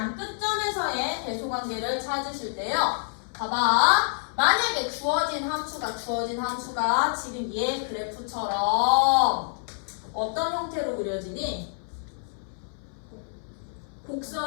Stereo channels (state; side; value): silent; right; 60 dB below the other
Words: 끝점에서의 대소 관계를 찾으실 때요. 봐봐. 만약에 주어진 함수가 지금 얘 그래프처럼 어떤 형태로 그려지니?